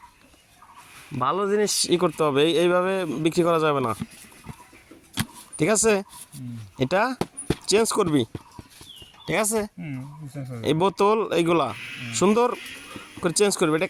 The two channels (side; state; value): both; identical; correlation 1.00